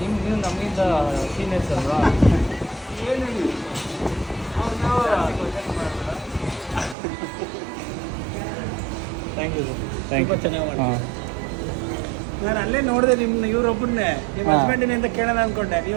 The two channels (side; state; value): left; drops out; at 7.0 s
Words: ನಮಗಿಂತ ಸೀನಿಯರ್ಸ್ ಅಲ್ವಾ? Thank you. ಚೆನ್ನಾಗಿ ನಾನು ಅಲ್ಲೇ ನೋಡಿದೆ ನಿಮ್ಮ ಇವ್ರೊಬ್ಬರನ್ನೇ, ನಿಮ್ಮ ಹಸ್ಬೆಂಡಿನ ಅಂತ ಕೇಳೋಣ ಅನ್ಕೊಂಡೆ.